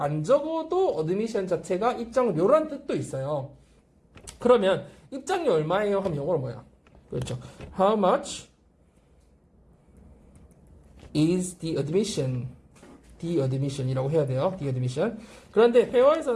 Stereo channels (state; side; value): identical; both; correlation 1.00